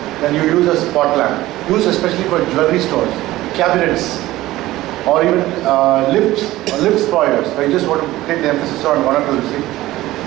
then you use a spot lamp. Used especially for jewelry stores, cabinets. or even lift spoilers, where you just want to take the emphasis on one or two things.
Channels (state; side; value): quieter; left; 16.6 dB